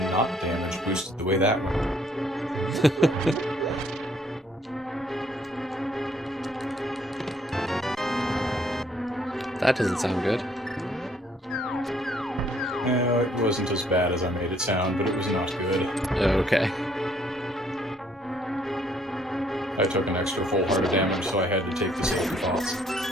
not damage boosted the way that went. That doesn't sound good. It wasn't as bad as I made it sound, but it was not good. Okay. I took an extra full heart of damage, so I had to take the second thoughts.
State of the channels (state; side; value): normal; both; correlation 0.65